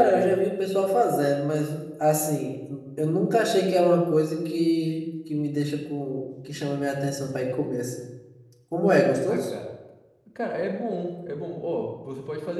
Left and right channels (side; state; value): both; identical; correlation 1.00